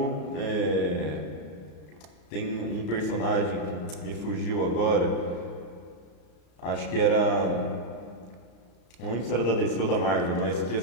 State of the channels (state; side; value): late; right; 34 ms